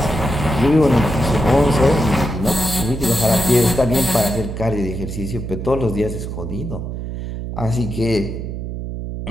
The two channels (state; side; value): noise; right; hum, 6 dB below the sound